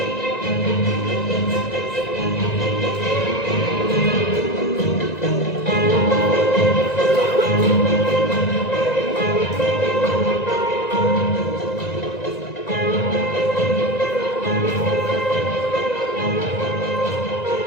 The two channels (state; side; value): late; right; 1.9 ms